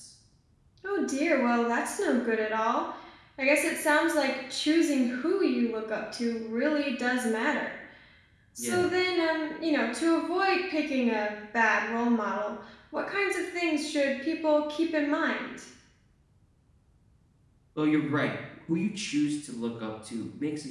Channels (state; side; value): identical; both; correlation 1.00